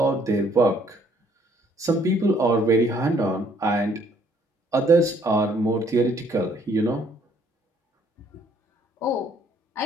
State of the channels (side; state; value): both; normal; correlation 0.64